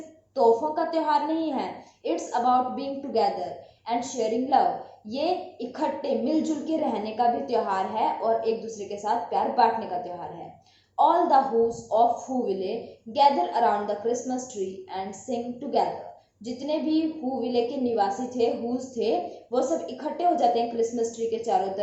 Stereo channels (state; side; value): identical; both; correlation 1.00